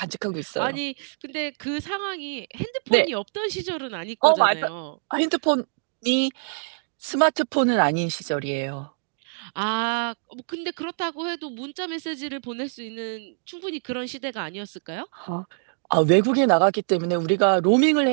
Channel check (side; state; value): left; silent; digital silence